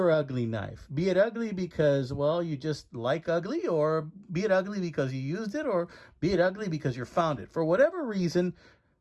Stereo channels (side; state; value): both; identical; correlation 1.00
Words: ugly knife. Be it ugly because, well, you just like ugly, or be it ugly because you used it, or be it ugly because you found it. For whatever reason,